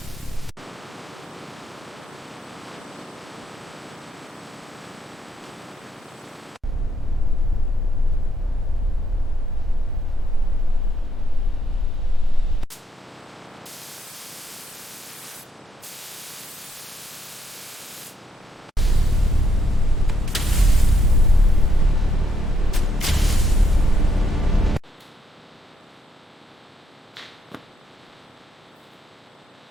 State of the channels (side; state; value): both; normal; correlation 0.75